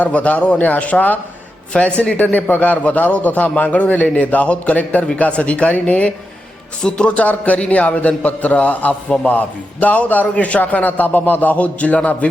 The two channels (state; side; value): normal; both; correlation 0.88